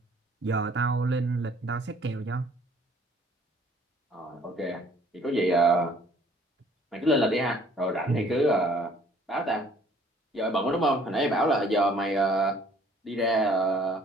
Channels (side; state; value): both; normal; correlation 0.57